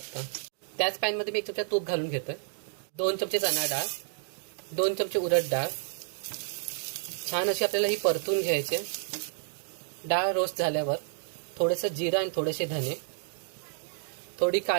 त्याच पॅनमध्ये मी 1 चमचा तूप घालून घेतोय. 2 चमचे चणा डाळ, 2 चमचे उडद डाळ. छान अशी आपल्याला ही परतून घ्यायची. डाळ रोस्ट झाल्यावर थोडंसं जिरं आणि थोडेसे धने, थोडी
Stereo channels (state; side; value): silent; left; digital silence